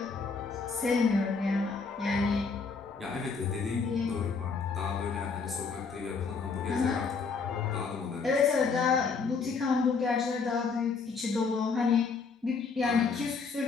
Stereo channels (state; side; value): quieter; right; 5.0 dB